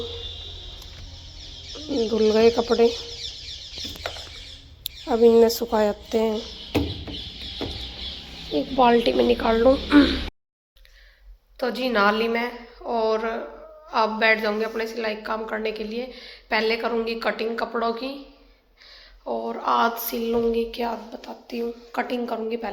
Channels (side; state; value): both; identical; correlation 1.00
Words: धुल गए कपड़े, अब इन्हें सुखा जाते हैं, एक बाल्टी में निकाल लूँ। तो जी नहा ली मैं, और अब बैठ जाऊंगी अपने सिलाई काम करने के लिए। पहले करूंगी कटिंग कपड़ों की, और आज सिल लूँगी क्या बताती हूँ। कटिंग करूँगी